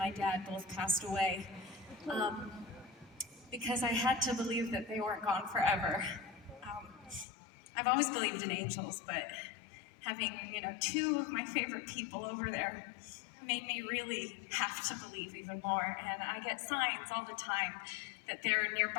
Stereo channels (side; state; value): right; drops out; at 7.2 s